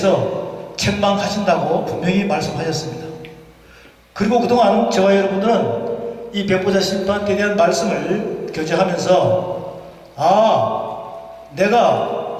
책망하신다고 분명히 말씀하셨습니다. 그리고 그동안 저와 여러분들은 이 백보자 심판에 대한 말씀을 교제하면서 내가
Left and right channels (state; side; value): identical; both; correlation 1.00